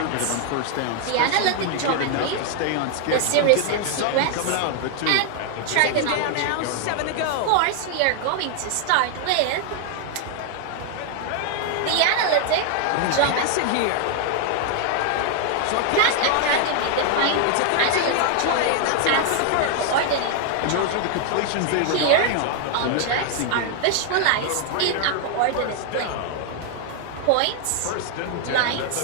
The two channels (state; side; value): different; both; correlation 0.00